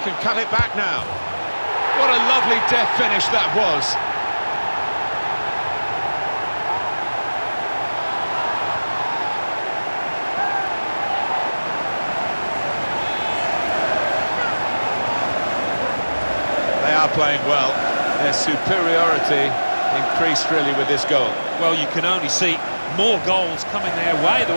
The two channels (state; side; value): inverted; both; correlation -1.00